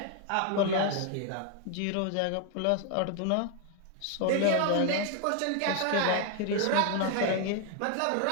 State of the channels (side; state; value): both; different; correlation 0.00